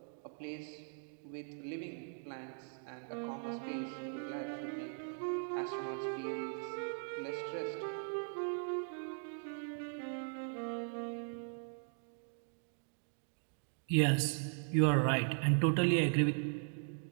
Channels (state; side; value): silent; left; 52 dB below the other